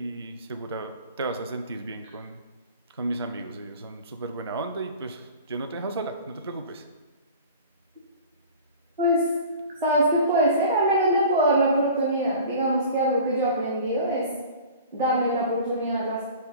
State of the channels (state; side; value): inverted; both; correlation -0.41